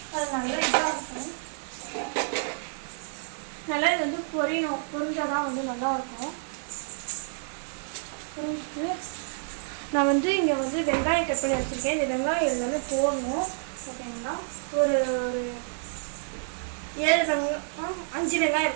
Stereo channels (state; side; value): silent; left; digital silence